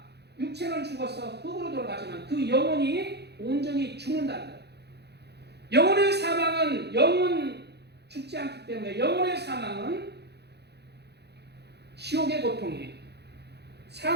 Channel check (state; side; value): late; left; 0.48 ms